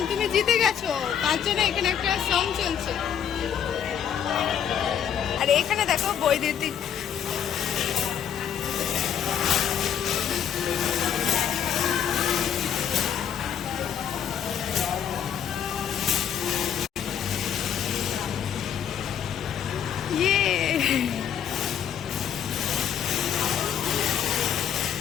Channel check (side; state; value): right; quieter; 8.9 dB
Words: তুমি জিতে গেছো, তার জন্য এখানে একটা সং চলছে। আর এখানে দেখো বৈদ্যুতিক